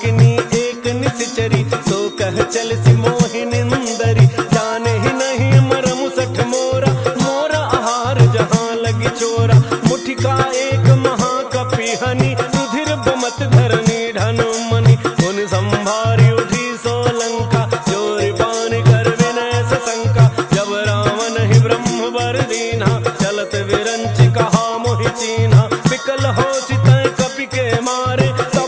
एक निश्चरी सो कह चल सि मोहि निंदरी जाने ही नहीं मरम सठ मोरा मोरा आहार जहाँ लगी चोरा मुठिका एक महाकपि हनि रुधिर बमत धरनी ढन मनि उन संभारी उठी सो लंका जोरि पान कर विनय सशंका जब रावण ही ब्रह्म वर दीन्हा चलत विरंच कहा मोहि चीन्हा विकल हो सितय कपि के मारे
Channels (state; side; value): identical; both; correlation 1.00